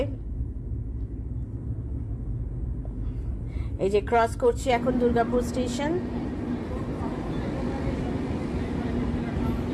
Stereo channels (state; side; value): identical; both; correlation 1.00